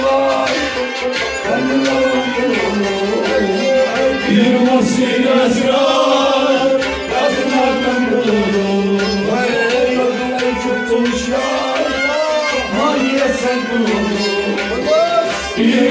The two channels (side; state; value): both; identical; correlation 1.00